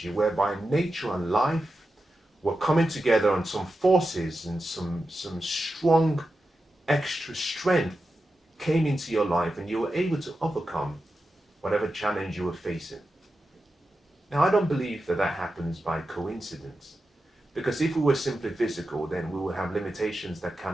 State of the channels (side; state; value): both; normal; correlation 0.91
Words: whereby nature and life were coming together, on some forces and some strong extra strength came into your life, and you were able to overcome whatever challenge you were facing. Now, I don't believe that happens by coincidence, because if we were simply physical, then we would have limitations that